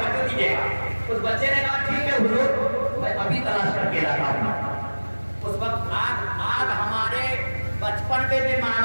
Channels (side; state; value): both; inverted; correlation -1.00